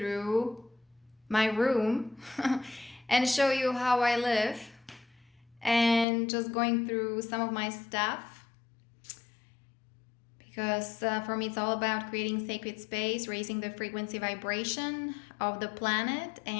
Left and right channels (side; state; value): right; drops out; at 6.1 s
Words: my room and show you how I live and just going through some of my stuff because for me it's all about creating sacred space, raising the frequency vibration of the planet,